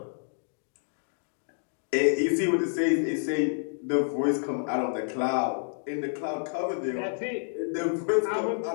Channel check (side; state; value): right; silent; digital silence